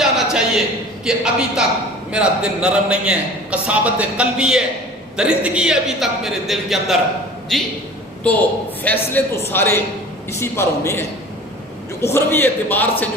چاہیے کہ ابھی تک میرا دل نرم نہیں ہے, قساوت قلبی ہے, درندگی ہے ابھی تک میرے دل کے اندر. جی تو فیصلے تو سارے اسی پر ہونے ہیں, جو اخروی اعتبار سے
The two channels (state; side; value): normal; both; correlation 0.42